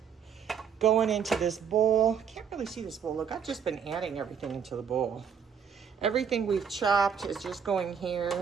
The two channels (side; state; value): left; quieter; 7.2 dB